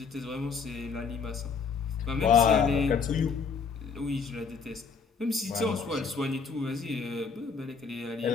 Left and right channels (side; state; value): right; quieter; 5.4 dB